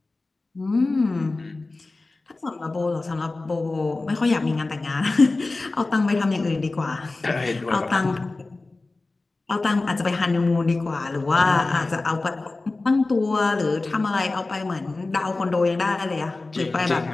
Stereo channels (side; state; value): right; quieter; 3.3 dB